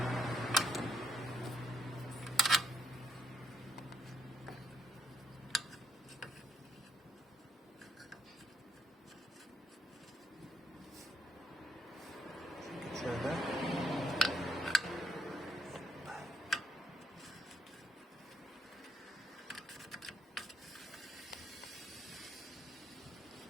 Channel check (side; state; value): both; normal; correlation 0.74